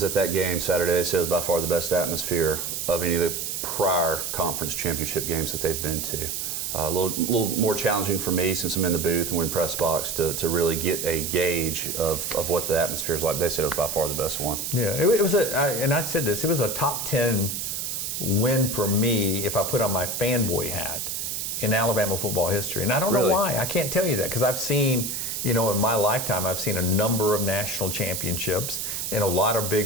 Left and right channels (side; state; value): right; noise; hiss, 3 dB below the sound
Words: at that game Saturday. It says by far the best atmosphere of any of the prior conference championship games that they've been to. A little more challenging for me since I'm in the booth and we're in press box to really get a gauge of what the atmosphere is like. They said it was by far the best one. Yeah, it was and I said this, it was a top 10 win for me if I put on my fanboy hat in Alabama football history. And I don't know why. I can't tell you that because I've seen, you know, in my lifetime, I've seen a number of national championships and a lot of